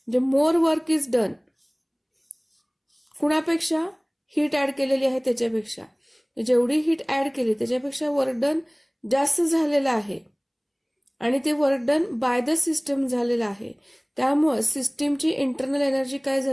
मोर वर्क इज डन कुणापेक्षा, हीट ॲड केलेली आहे त्याच्यापेक्षा. जेवढी हीट ॲड केली त्याच्यापेक्षा वर्क डन जास्त झालेलं आहे आणि ते work done by the system झालेलं आहे. त्यामुळे सिस्टीमची इंटरनल एनर्जी काय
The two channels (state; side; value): identical; both; correlation 1.00